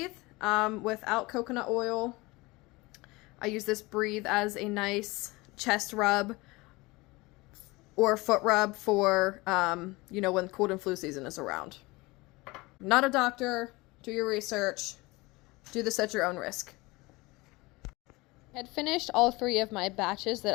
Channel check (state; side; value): quieter; right; 22.8 dB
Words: without coconut oil. I use this Breathe as a nice chest rub or foot rub for, you know, when cold and flu season is around. I'm not a doctor. Do your research. Do this at your own risk. I had finished all 3 of my batches that